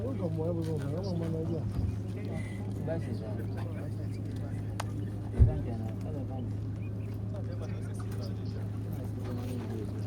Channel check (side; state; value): both; identical; correlation 1.00